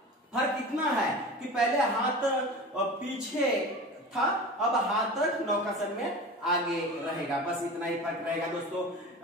फर्क इतना है कि पहले हाथ पीछे था, अब हाथ नौकासन में आगे रहेगा, बस इतना ही फर्क रहेगा दोस्तों।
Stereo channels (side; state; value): both; normal; correlation 0.33